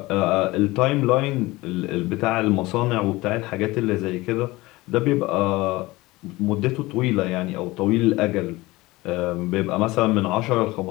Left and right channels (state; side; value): quieter; right; 20.4 dB